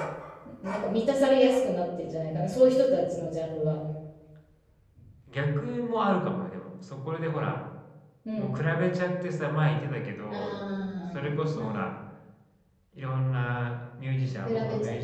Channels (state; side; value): identical; both; correlation 1.00